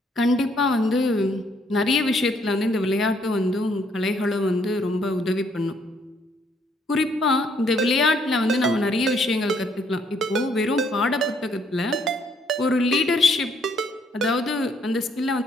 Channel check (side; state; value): both; normal; correlation 0.68